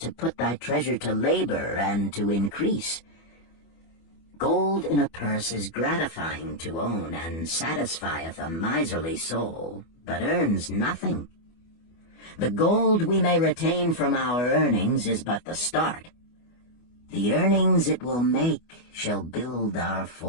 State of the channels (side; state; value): right; late; 24 ms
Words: put thy treasure to labor and to increase. Gold in a purse is gratifying to own, and satisfieth a miserly soul, but earns nothing. The gold we may retain from our earnings is but the start. The earnings it will make shall build our